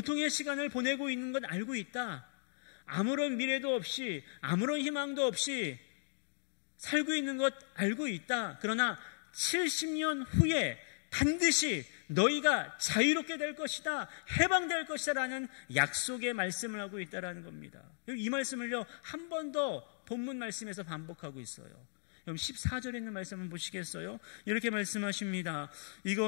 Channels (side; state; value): right; silent; digital silence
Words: 시간을 보내고 있는 건 알고 있다. 아무런 미래도 없이 아무런 희망도 없이 살고 있는 것 알고 있다. 그러나 70년 후에 반드시 너희가 자유롭게 될 것이다, 해방될 것이다 라는 약속의 말씀을 하고 있다는 겁니다. 이 말씀을요 한 번 더 본문 말씀에서 반복하고 있어요. 그럼 14절에 있는 말씀 한번 보시겠어요? 이렇게 말씀하십니다.